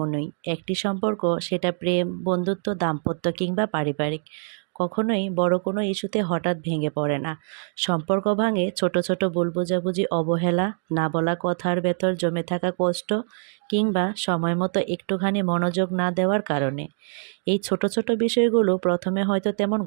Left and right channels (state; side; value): silent; left; 62 dB below the other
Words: একটি সম্পর্ক, সেটা প্রেম, বন্ধুত্ব, দাম্পত্য কিংবা পারিবারিক, কখনোই বড় কোনো ইস্যুতে হঠাৎ ভেঙে পড়ে না। সম্পর্ক ভাঙে ছোট, ছোট ভুল বোঝাবুঝি, অবহেলা, না বলা কথার ভেতর জমে থাকা কষ্ট কিংবা সময়মতো একটুখানি মনোযোগ না দেওয়ার কারণে। এই ছোট, ছোট বিষয়গুলো প্রথমে হয়তো তেমন